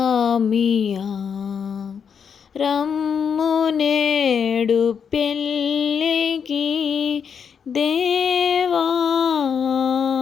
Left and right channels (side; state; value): right; quieter; 7.0 dB